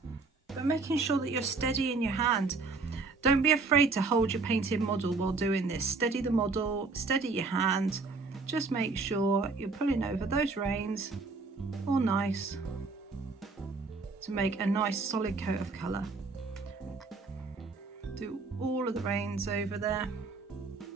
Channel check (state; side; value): quieter; left; 4.0 dB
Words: but making sure that you're steady in your hand. Don't be afraid to hold your painted model while doing this. Steady the model, steady your hand. Just make sure you're pulling over those reins all nice to make a nice solid coat of colour. Do all of the reins over there.